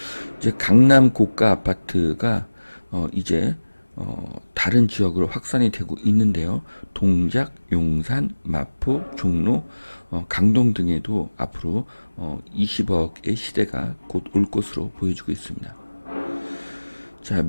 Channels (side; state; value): both; inverted; correlation -1.00